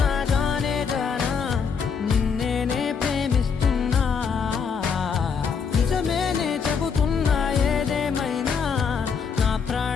జానే జానా నిన్నేనే ప్రేమిస్తున్నా నిజమేనే చెబుతున్నా ఏదేమైనా నా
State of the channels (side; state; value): right; quieter; 6.1 dB